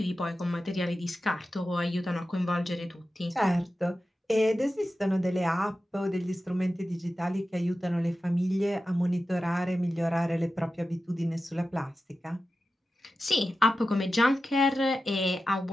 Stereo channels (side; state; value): both; normal; correlation 0.93